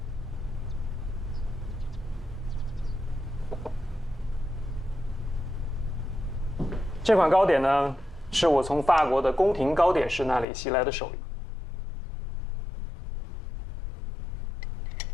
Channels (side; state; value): right; drops out; at 10.5 s